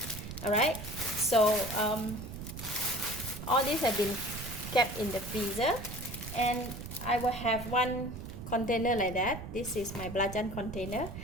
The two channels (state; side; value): noise; right; rumble, 9 dB below the sound